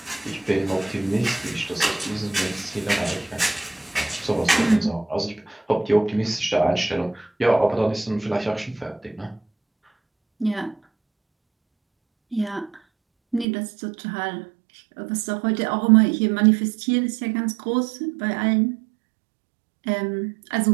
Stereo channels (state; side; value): drops out; left; at 13.5 s